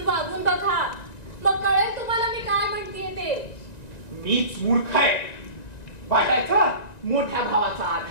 वागून बघा, मग कळेल तुम्हाला मी काय म्हणतेय ते. मीच मूर्ख आहे. वाटायचा मोठ्या भावाचा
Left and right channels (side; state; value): right; late; 1.9 ms